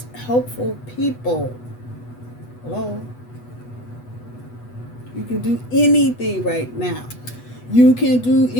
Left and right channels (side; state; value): right; late; 8.1 ms